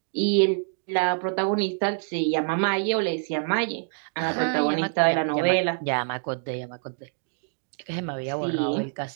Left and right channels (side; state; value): left; silent; 59 dB below the other